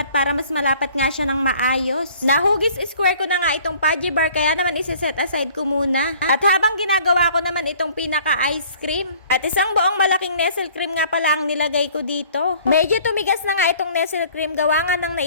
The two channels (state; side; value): inverted; both; correlation -0.53